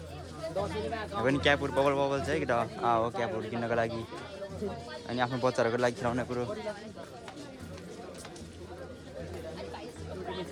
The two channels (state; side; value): identical; both; correlation 1.00